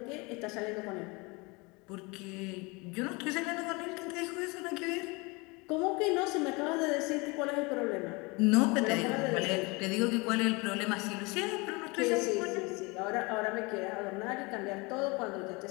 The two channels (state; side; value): quieter; right; 26.8 dB